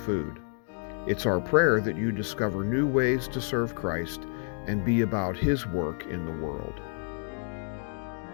It's our prayer that you discover new ways to serve Christ and be about His work in the world.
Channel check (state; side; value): silent; right; 58 dB below the other